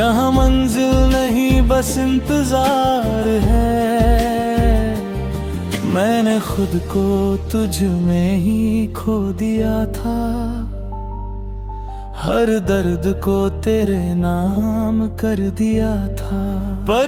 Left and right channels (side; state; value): both; identical; correlation 1.00